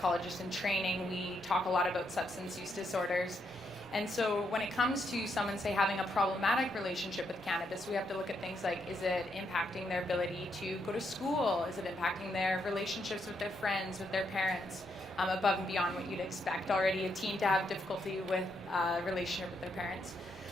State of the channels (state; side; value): normal; both; correlation 0.78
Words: in training, we talk a lot about substance use disorders. And so when it comes to someone, say, having a problematic relationship with cannabis, we have to look at things like, is it impacting their ability to go to school? Is it impacting their relationships with their friends, with their parents, above and beyond what you'd expect already a teen to have difficulty with a relationship with their parents?